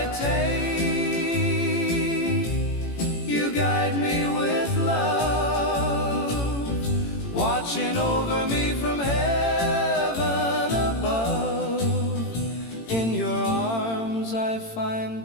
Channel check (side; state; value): right; late; 18 ms